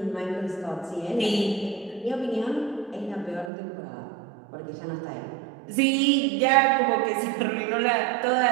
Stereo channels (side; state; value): left; drops out; at 3.5 s